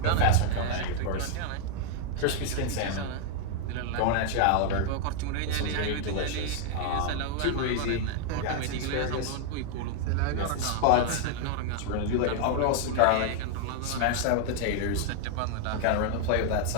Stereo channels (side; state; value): both; different; correlation 0.00